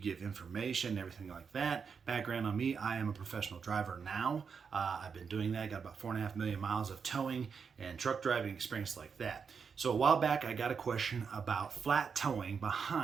information, everything like that. Background on me, I am a professional driver now. I've been doing that, got about 4.5 million miles of towing and truck driving experience like that. So a while back, I got a question about flat towing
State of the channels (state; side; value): quieter; left; 6.0 dB